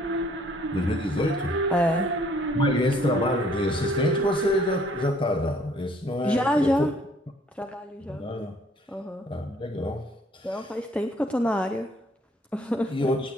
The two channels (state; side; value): normal; both; correlation 0.60